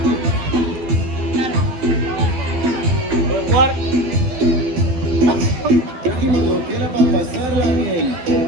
¿Puedes jugar? trajimos lo que era para pasarla bien.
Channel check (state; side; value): late; left; 12 ms